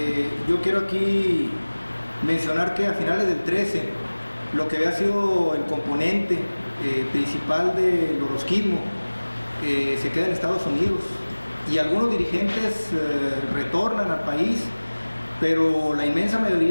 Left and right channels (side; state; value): both; inverted; correlation -1.00